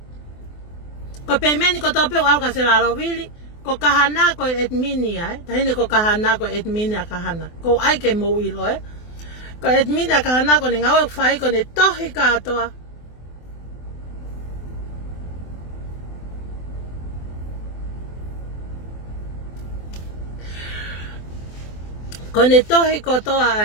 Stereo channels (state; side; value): late; right; 24 ms